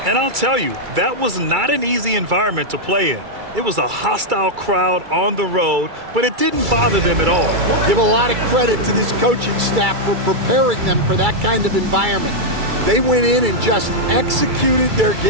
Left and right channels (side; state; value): left; late; 2.3 ms